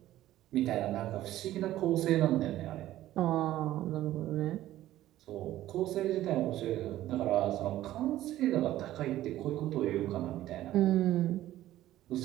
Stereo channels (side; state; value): left; quieter; 14.2 dB